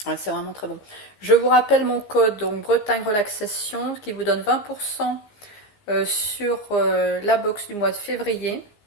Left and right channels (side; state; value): right; late; 15 ms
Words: Ouais, c'est vraiment très bon. Je vous rappelle mon code, donc Bretagne Relaxation, qui vous donne 20% sur la box du mois de février.